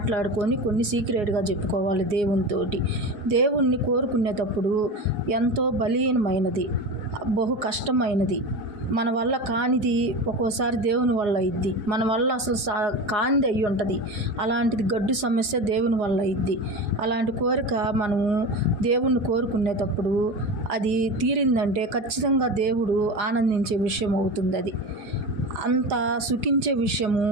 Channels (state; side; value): late; left; 4.8 ms